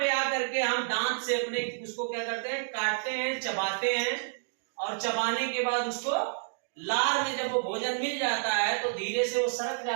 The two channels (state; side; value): silent; left; digital silence